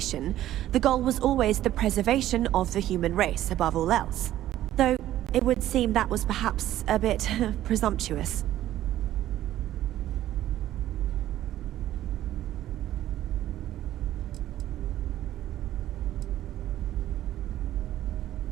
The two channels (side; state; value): left; quieter; 13.3 dB